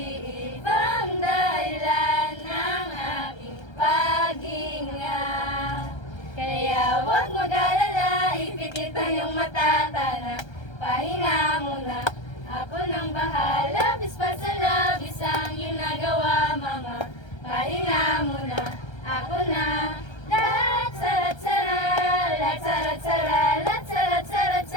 dahilan ng aking paghinga. Kaya huwag mag-alala, ipikit ang iyong mata, tara, pahinga muna. Ako nang bahala, bispa sa labis ang iyong nagawa, mama. Pahinga muna, ako na. Lat-sara-tsara, lat-sara-tsara,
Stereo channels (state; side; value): late; right; 1.3 ms